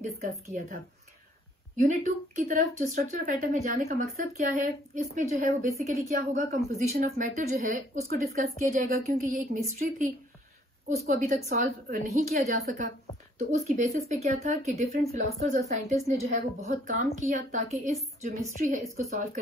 डिस्कस किया था। यूनिट 2 की तरफ जो स्ट्रक्चर ऑफ एटम में जाने का मकसद क्या है, इसमें जो है वो बेसिकली क्या होगा, कंपोजिशन ऑफ मैटर जो है उसको डिस्कस किया जाएगा, क्योंकि ये एक मिस्ट्री थी, उसको अभी तक सॉल्व नहीं किया जा सका। तो उसकी बेसिस पे क्या था कि डिफरेंट फिलोसफर्स और साइंटिस्ट ने जो है वो बहुत काम किया ताकि इस जो मिस्ट्री है इसको सॉल्व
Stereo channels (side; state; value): both; normal; correlation 0.62